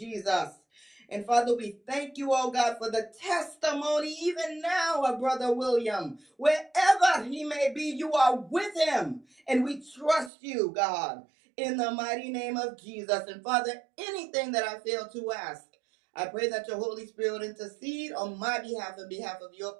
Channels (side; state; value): left; drops out; at 10.3 s